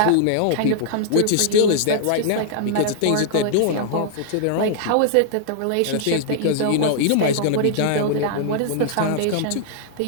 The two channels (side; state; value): both; different; correlation -0.01